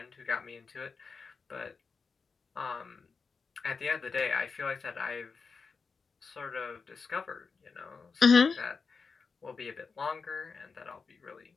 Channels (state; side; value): quieter; right; 5.0 dB